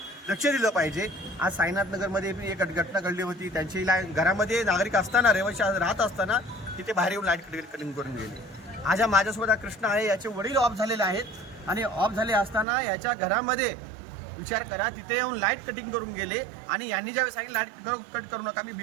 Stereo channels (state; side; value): drops out; left; at 12.7 s